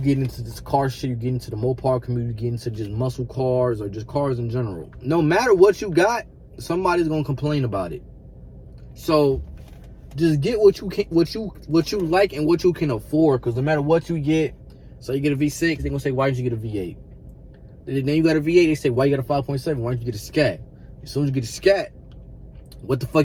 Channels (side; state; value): both; identical; correlation 1.00